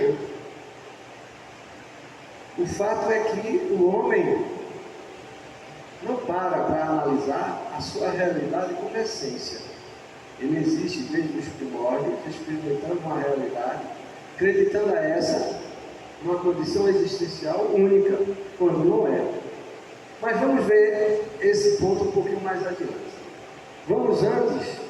outro. O fato é que o homem não para analisar a sua realidade como essência. Ele existe desde os primórdios, experimentando uma realidade, acreditando a essa uma condição existencial única, quando não é. Mas vamos ver esse ponto um pouquinho mais adiante. Vamos antes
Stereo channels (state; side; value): identical; both; correlation 1.00